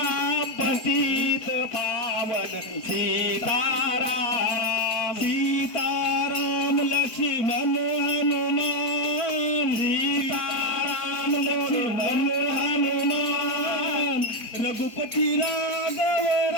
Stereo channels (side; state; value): right; late; 4.3 ms